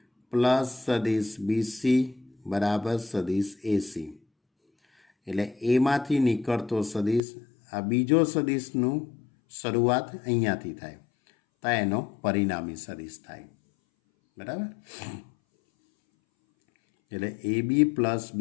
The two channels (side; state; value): right; drops out; at 7.2 s